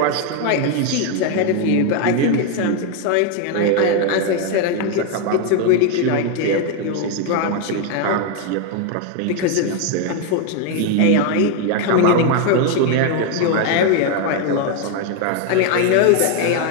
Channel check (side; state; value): both; different; correlation 0.01